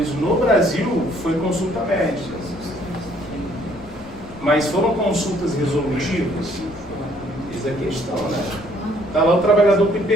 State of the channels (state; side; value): noise; left; rumble, 22 dB below the sound